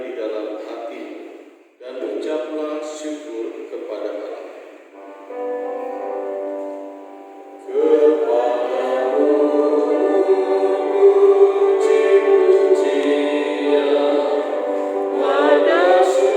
di dalam hati, dan ucaplah syukur kepada Allah.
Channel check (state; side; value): identical; both; correlation 1.00